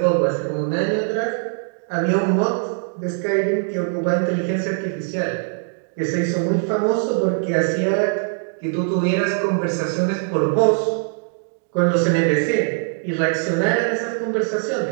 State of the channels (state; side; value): silent; left; digital silence